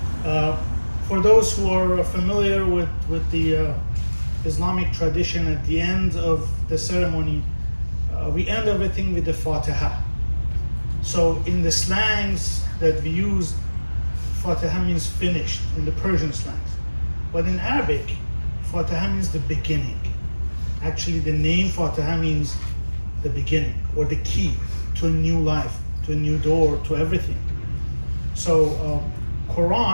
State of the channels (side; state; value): both; inverted; correlation -1.00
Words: For those who are familiar with the Islamic tradition, at the end of the ceremony, we end everything with the Fatiha. So in the slangs that we use, Fatiha means finished in the Persian slangs. But in Arabic, Fatiha means the beginning. Actually, the name Fatiha means the beginning, or the key to a new life, to a new door, to everything. So